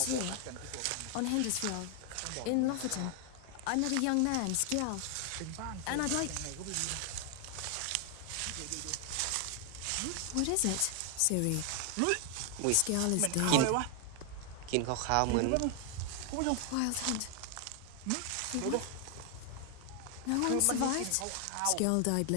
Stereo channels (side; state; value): both; different; correlation 0.00